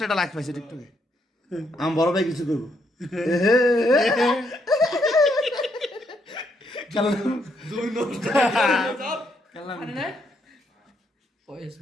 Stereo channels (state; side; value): normal; both; correlation 0.75